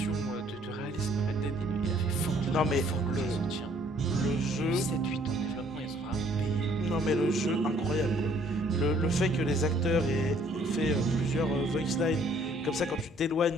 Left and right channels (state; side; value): normal; both; correlation 0.61